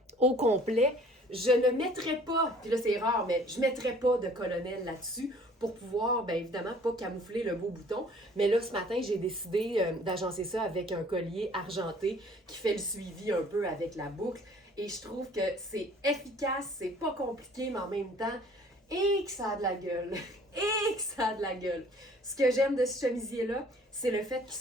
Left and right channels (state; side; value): normal; both; correlation 0.54